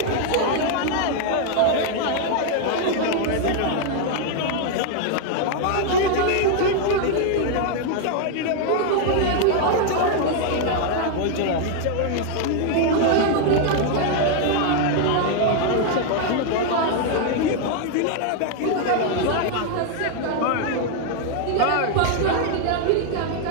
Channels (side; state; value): both; different; correlation 0.00